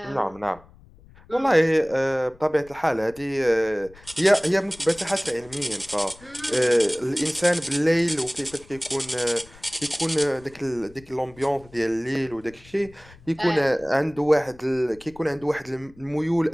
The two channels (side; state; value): left; noise; rumble, 24 dB below the sound